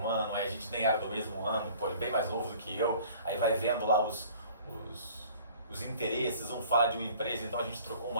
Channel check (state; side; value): inverted; both; correlation -0.50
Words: aí a gente nem era do mesmo ano, pô, ele é bem mais novo do que eu, aí vai vendo lá os interesses, um fala de uma empresa, então a gente trocou